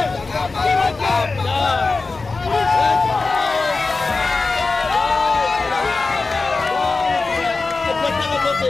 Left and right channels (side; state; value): right; quieter; 3.9 dB